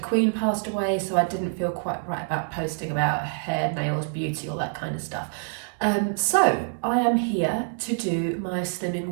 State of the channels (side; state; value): left; silent; digital silence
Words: passed away, so I didn't feel quite right about posting about hair, nails, beauty, all that kind of stuff. So I am here to do my Slimming